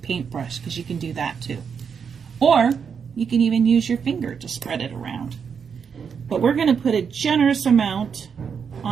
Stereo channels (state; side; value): quieter; left; 6.6 dB